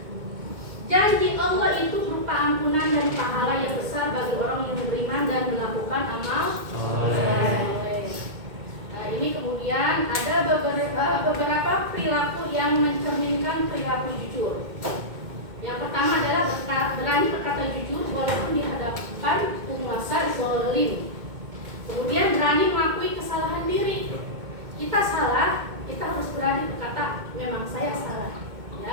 Janji Allah itu berupa ampunan dan pahala. pahala yang besar bagi orang yang beriman dan melakukan amal soleh. Nah, ini kemudian ada beberapa perilaku yang mencerminkan perilaku jujur. Yang pertama adalah berani berkata jujur walaupun di hadapan penguasa zalim. Kemudian berani mengakui kesalahan diri. Kita salah, kita harus berani berkata memang saya salah.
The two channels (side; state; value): left; late; 2.2 ms